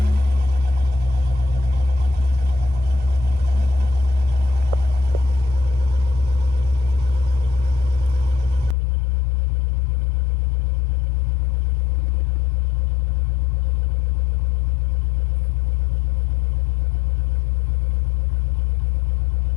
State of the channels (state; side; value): drops out; right; at 8.8 s